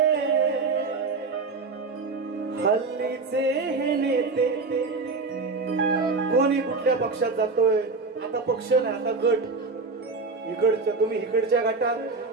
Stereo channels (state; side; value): quieter; left; 4.0 dB